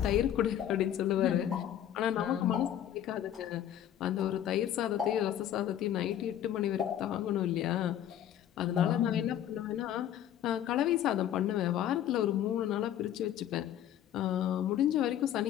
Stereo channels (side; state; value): right; quieter; 10.9 dB